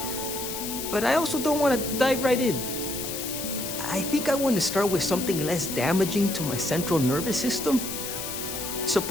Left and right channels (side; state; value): left; noise; hiss, 6 dB below the sound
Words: But I also don't want to dive right in. I think I want to start with something less damaging to my central nervous system.